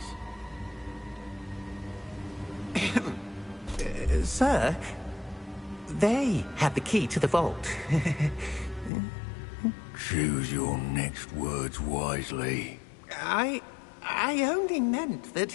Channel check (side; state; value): right; drops out; at 8.9 s